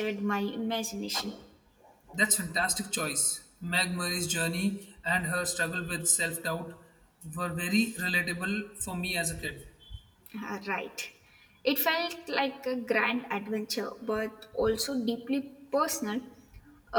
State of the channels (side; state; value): both; identical; correlation 1.00